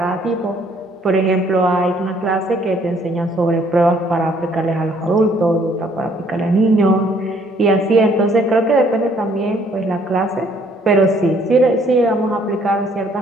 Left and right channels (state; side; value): normal; both; correlation 0.63